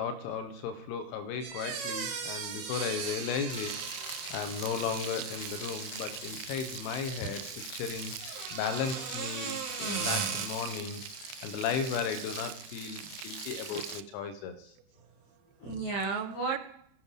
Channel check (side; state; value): right; late; 30 ms